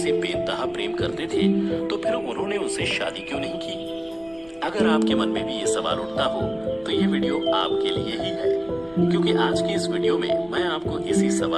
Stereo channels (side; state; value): left; noise; rumble, 25 dB below the sound